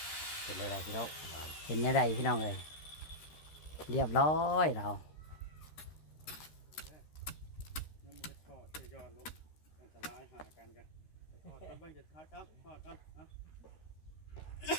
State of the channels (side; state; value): right; late; 13 ms